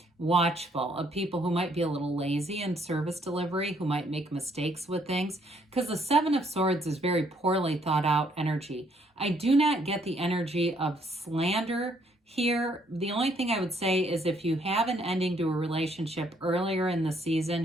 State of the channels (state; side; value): normal; both; correlation 0.68